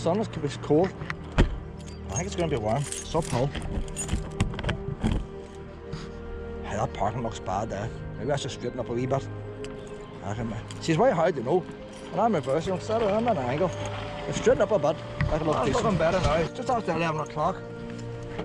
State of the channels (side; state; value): both; identical; correlation 1.00